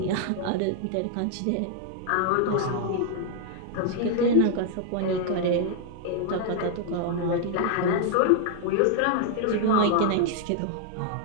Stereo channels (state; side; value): different; both; correlation 0.00